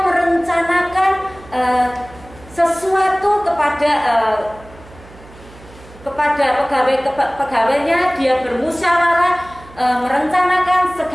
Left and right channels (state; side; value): noise; right; hum, 21 dB below the sound